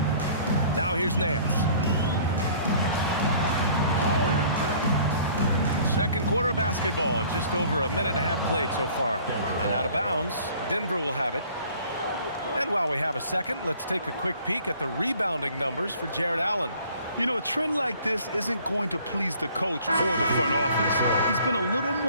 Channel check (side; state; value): both; inverted; correlation -0.53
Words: Now here's Nance. Second quarter of basketball, just over a minute and a half played so far. And out of bounds, Denver will have it. And while we have a second, let's take a quick peek at the rebounding numbers for Jared Allen. You know, a trend like this isn't going to please the coach or the front office. He's been a little